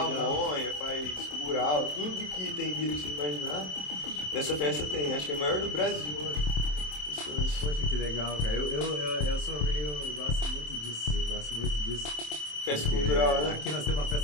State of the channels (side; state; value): right; late; 27 ms